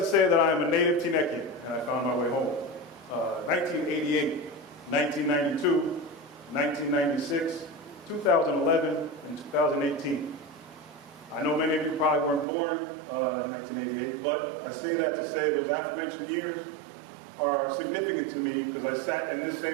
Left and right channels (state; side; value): drops out; left; at 12.5 s